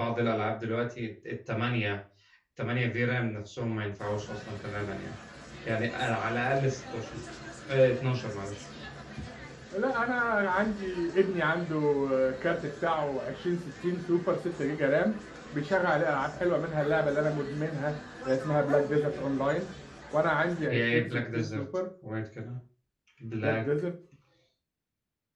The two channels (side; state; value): both; identical; correlation 1.00